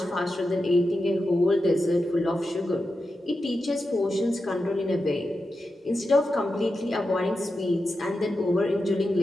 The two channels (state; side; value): normal; both; correlation 0.90